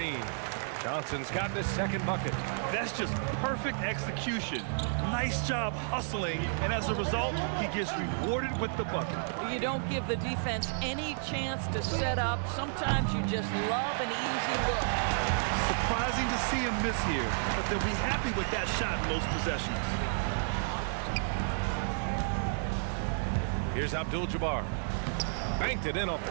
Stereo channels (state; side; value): silent; left; digital silence